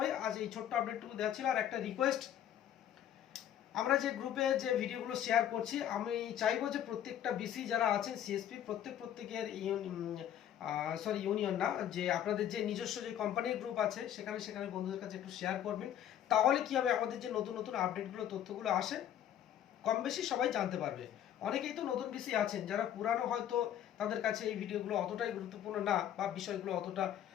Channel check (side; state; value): right; quieter; 10.6 dB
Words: আজ এই ছোট্ট আপডেটটুকু দেওয়া ছিল। আর একটা রিকোয়েস্ট, আমরা যে গ্রুপে যে ভিডিওগুলো শেয়ার করছি, আমি চাইবো যে প্রত্যেকটা বিসি যারা আছেন সিএসপি প্রত্যেকের ইউনিয়ন না, যে আপনাদের যে নিজস্ব যে কোম্পানির গ্রুপ আছে সেখানে সেখানে বন্ধুদের কাছে একটু শেয়ার করবেন। তাহলে কি হবে, আমাদের যে নতুন নতুন আপডেটগুলো তথ্যগুলো আসে কম বেশি সবাই জানতে পারবে। অনেকেই তো নতুন বিসি আছেন যারা পুরানো, হয়তো তাদের কাছে এই ভিডিওগুলো অতটাই গুরুত্বপূর্ণ না, বা বিষয়গুলো অতটা